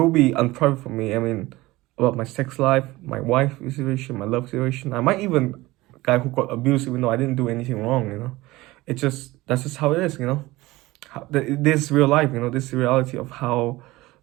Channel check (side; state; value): left; quieter; 19.4 dB